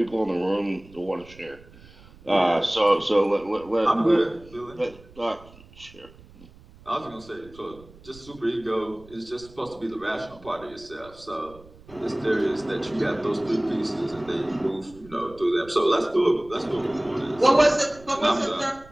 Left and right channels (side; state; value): right; noise; rumble, 22 dB below the sound